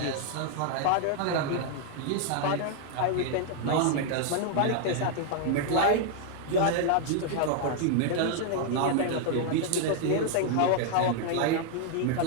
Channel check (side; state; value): both; different; correlation 0.00